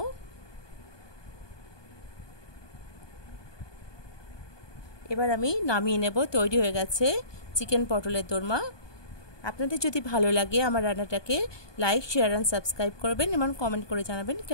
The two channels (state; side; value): late; right; 1.2 ms